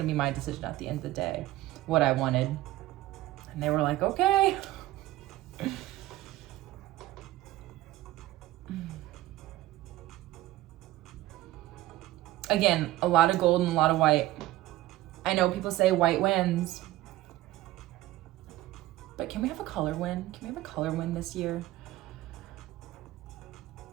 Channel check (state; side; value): quieter; left; 16.2 dB